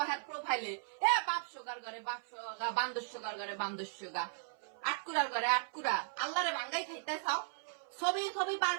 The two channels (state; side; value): silent; left; 53 dB below the other